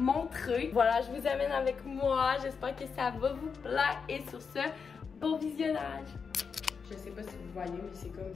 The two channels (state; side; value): quieter; right; 5.8 dB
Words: Voilà, je vous amène avec moi. J'espère que ça va vous plaire. Et sur ce, bon visionnage! Je sais pas si vous voyez, mais c'est comme